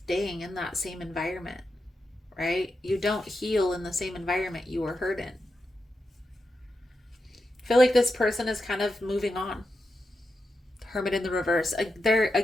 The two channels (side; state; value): both; normal; correlation 0.88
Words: in that same environment. Right? You don't heal in the same environment you were hurt in. I feel like this person is kind of moving on. Hermit in the reverse. They're,